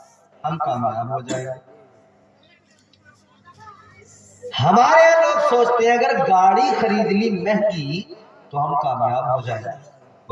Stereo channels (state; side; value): identical; both; correlation 1.00